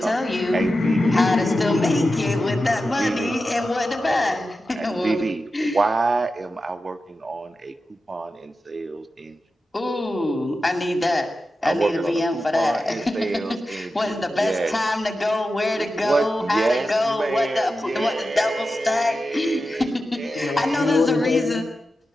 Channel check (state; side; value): normal; both; correlation 0.91